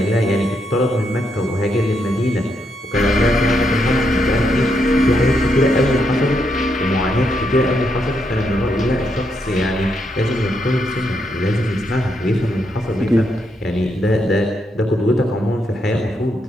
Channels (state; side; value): normal; both; correlation 0.79